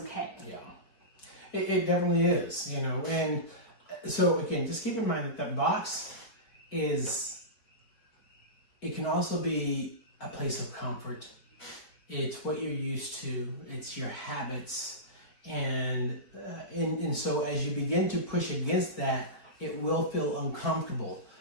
Yeah, it definitely is, and so again, just keep in mind that box it can also be a place of comfort. It's what you're used to. It's your habits. And so as you begin to push against that, it will feel uncomfortable.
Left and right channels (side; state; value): right; late; 4.7 ms